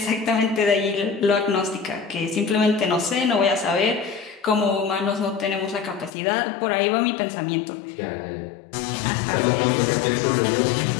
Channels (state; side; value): drops out; right; at 6.1 s